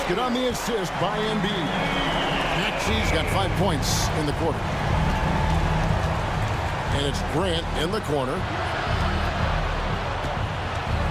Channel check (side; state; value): both; identical; correlation 1.00